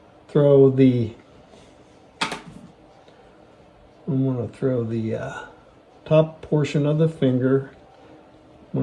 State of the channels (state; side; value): identical; both; correlation 1.00